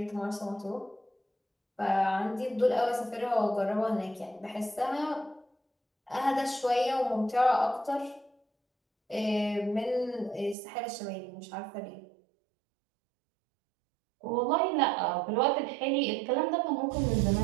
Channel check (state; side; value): drops out; left; at 10.6 s